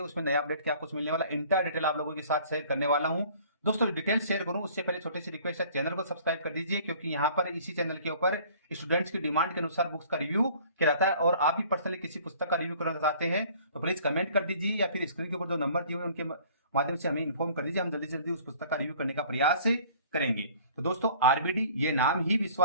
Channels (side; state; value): both; inverted; correlation -0.52